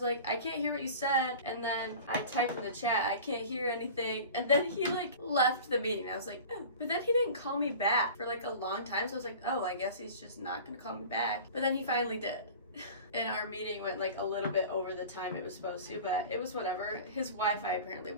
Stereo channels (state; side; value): inverted; both; correlation -0.39